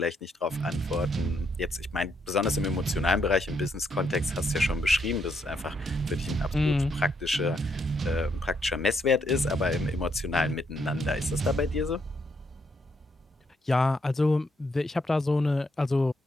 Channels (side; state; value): both; normal; correlation 0.76